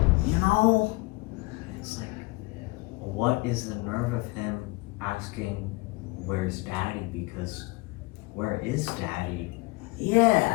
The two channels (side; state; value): right; quieter; 24.3 dB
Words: You know? It's like, what is the nerve of him asking, where's daddy? Because where is daddy?